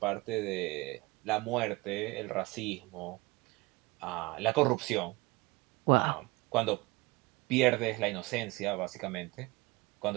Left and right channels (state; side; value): quieter; left; 23.0 dB